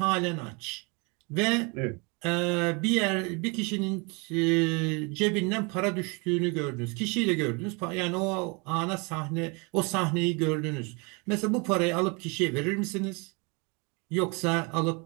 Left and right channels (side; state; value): left; quieter; 30.5 dB